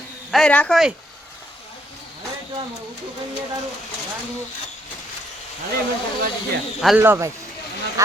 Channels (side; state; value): both; normal; correlation 0.72